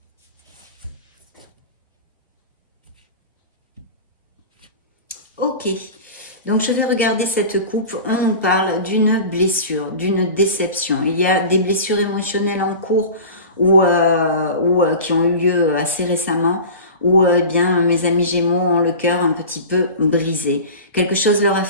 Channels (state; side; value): inverted; both; correlation -0.34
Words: Ok. Donc, je vais regarder cette coupe. On nous parle d'une blessure, d'une déception. Il y a des blessures émotionnelles en cours ou qui ont eu lieu assez récemment, où bien mes amis Gémeaux ont le cœur un petit peu brisé. Quelque chose leur a